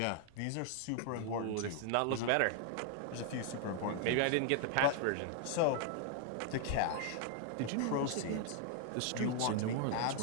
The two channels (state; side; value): different; both; correlation 0.00